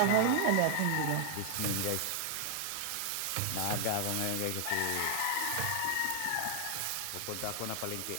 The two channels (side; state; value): both; different; correlation -0.01